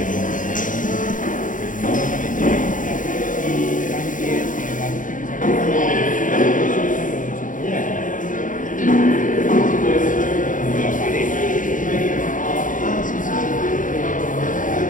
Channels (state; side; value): late; right; 0.38 ms